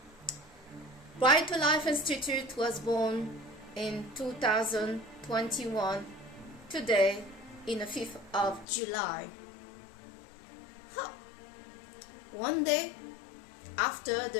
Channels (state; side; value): drops out; right; at 8.7 s